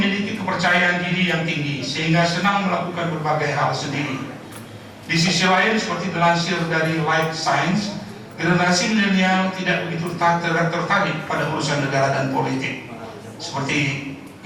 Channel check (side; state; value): both; identical; correlation 1.00